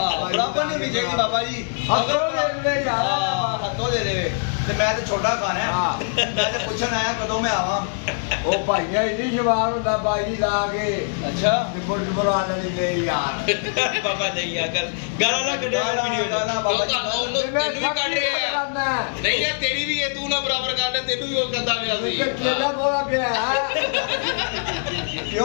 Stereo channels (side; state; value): right; silent; digital silence